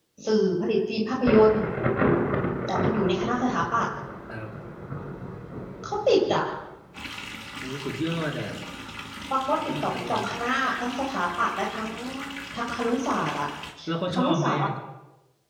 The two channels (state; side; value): identical; both; correlation 1.00